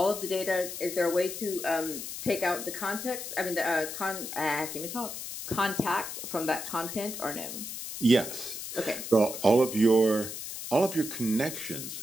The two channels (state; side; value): noise; left; hiss, 8 dB below the sound